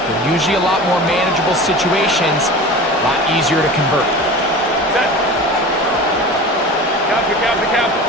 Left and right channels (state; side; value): normal; both; correlation 0.35